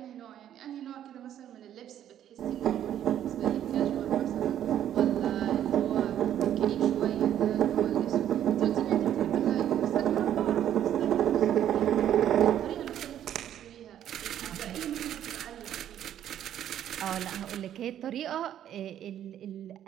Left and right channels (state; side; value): quieter; left; 10.8 dB